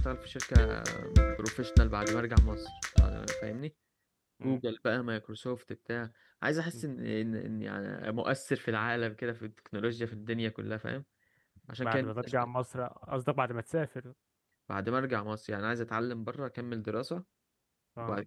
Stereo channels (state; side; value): identical; both; correlation 1.00